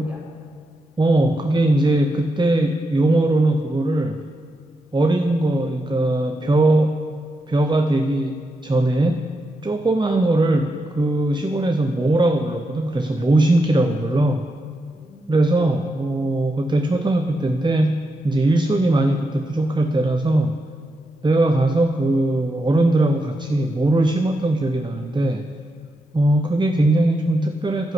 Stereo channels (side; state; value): both; normal; correlation 0.85